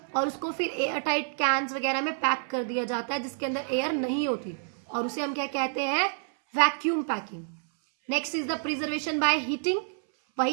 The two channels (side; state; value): left; silent; 59 dB below the other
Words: और उसको फिर एयर टाइट कैंस वगैरह में पैक कर दिया जाता है जिसके अंदर एयर नहीं होती, और उसे हम क्या कहते हैं? Vacuum packing. Next is the preservation by heating,